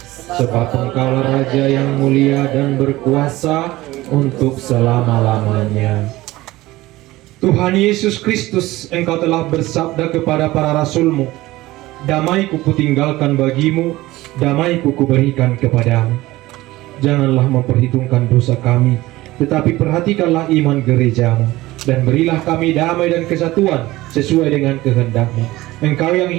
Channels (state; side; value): quieter; left; 18.2 dB